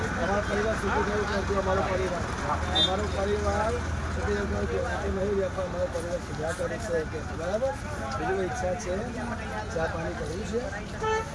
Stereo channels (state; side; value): identical; both; correlation 1.00